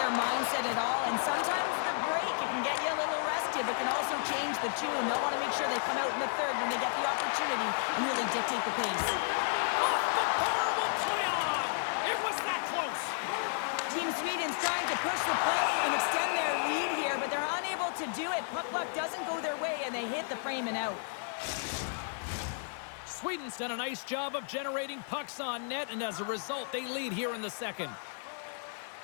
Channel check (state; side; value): silent; right; digital silence